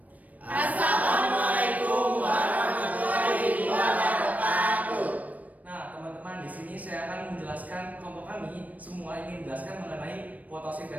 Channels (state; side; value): late; left; 0.072 ms